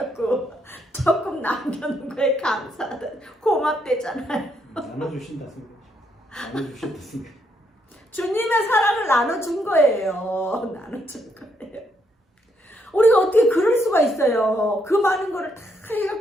조금 남겨놓은 거에 감사하다. 고맙대잖아요. 나눠주신다 생각. 나눠주신다 생각. 주님의 사랑을 나눠준 거예요. 나눠준 거예요. 우리가 어떻게 그럴 수가 있어요. 그 많은 거를 다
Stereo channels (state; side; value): normal; both; correlation 0.75